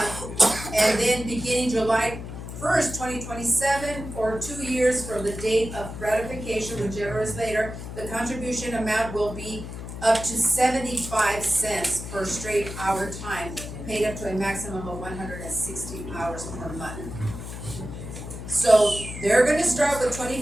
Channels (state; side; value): noise; left; hum, 9 dB below the sound